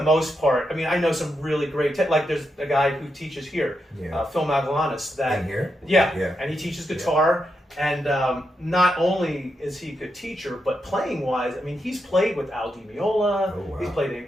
most part, I know some really great, there's a guy who teaches here, Phil Magalanis. In here? Yeah, and he teaches guitar, and not only is he a good teacher, but playing-wise, he's played with Al Di Meola, he's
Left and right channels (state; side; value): normal; both; correlation 0.84